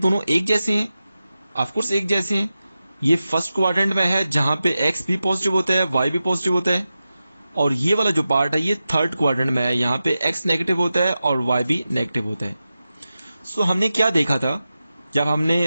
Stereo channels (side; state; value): both; inverted; correlation -0.93